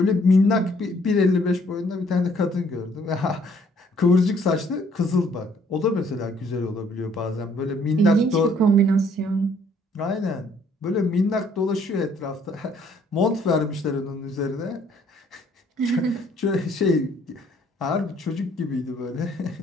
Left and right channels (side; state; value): both; normal; correlation 0.63